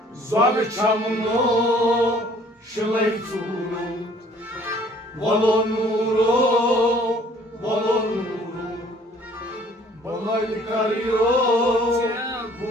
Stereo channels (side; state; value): both; normal; correlation 0.56